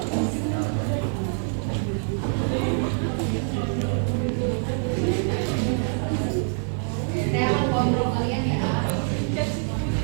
Saya akan kontrol kalian ya.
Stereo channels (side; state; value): left; silent; 62 dB below the other